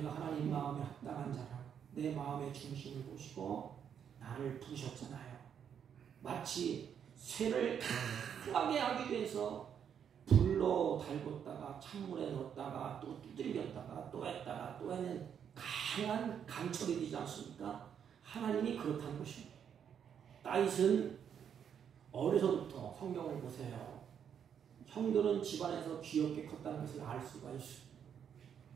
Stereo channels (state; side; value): quieter; left; 8.2 dB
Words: 하나님 마음에 합당한 자라 내 마음의 중심을 보시고 나를 부르셨잖아요. 마치 쇠를 강하게 하기 위해서 불로 달궜다가 찬물에 넣었다가 또 두들겼다가 또 했다가 또 해는 강한 강철이 되지 않습니까? 하나님이 그렇다는 것입니다. 다윗은 어려서부터 성경을 보세요. 형들은 집안에서 귀엽게 컸다는 것을 알 수가 있어요.